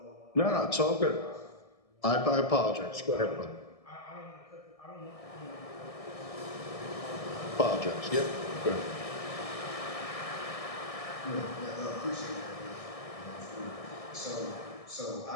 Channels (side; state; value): right; late; 1.6 ms